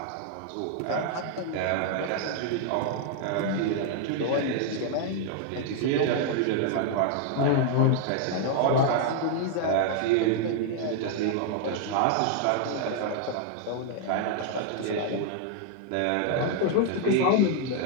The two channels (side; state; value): both; different; correlation 0.00